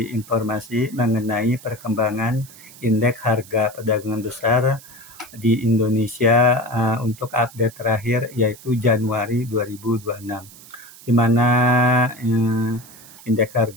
informasi mengenai perkembangan indeks harga perdagangan besar di Indonesia untuk update terakhir yaitu Januari 2026. Di mana indeks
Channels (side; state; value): right; noise; hiss, 20 dB below the sound